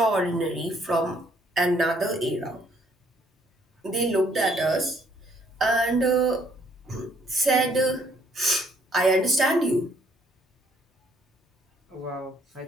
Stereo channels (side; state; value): both; normal; correlation 0.65